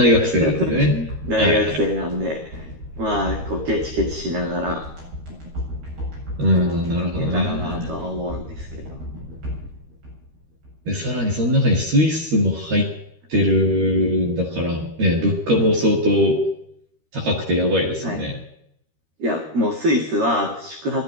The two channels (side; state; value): left; late; 13 ms